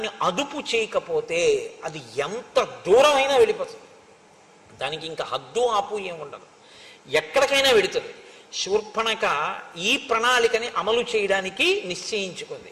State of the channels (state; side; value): identical; both; correlation 1.00